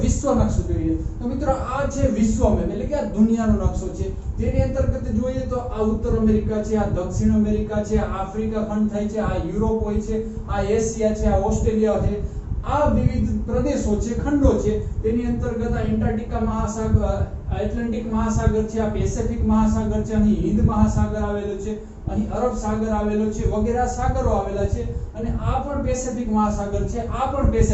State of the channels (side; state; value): both; identical; correlation 1.00